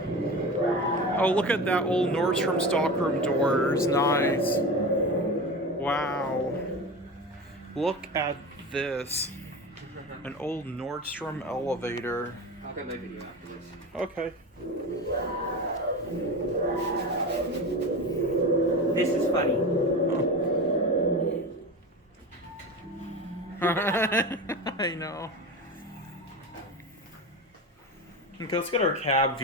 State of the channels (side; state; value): both; normal; correlation 0.27